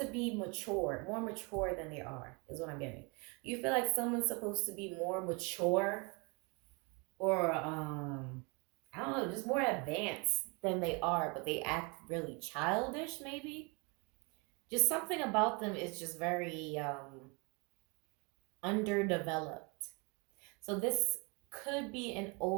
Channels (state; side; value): quieter; left; 30.7 dB